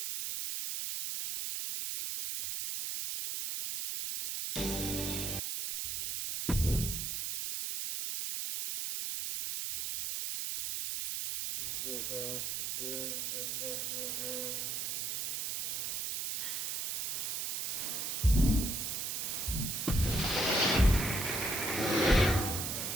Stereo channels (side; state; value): right; noise; hiss, 2 dB below the sound